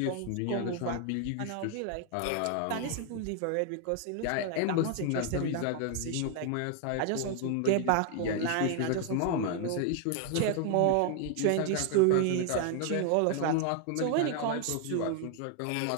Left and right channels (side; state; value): both; different; correlation 0.00